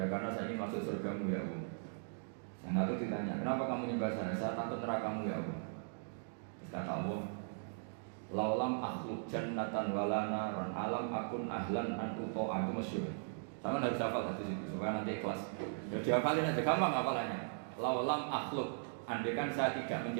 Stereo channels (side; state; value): left; silent; digital silence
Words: karena saya ingin masuk surgamu ya Allah. Yang satu ditanya, kenapa kamu nyembah saya? Saya takut nerakamu ya Allah. Terus kata Allah, laulam akhluk jannatan walana ron alam akun ahlan an uto'a. Itu masyhur. Sama harus hafal hadis itu supaya nanti ikhlas. Ya dihafalin aja, gampang hafalannya. Laulam akhluk, andaikan saya tidak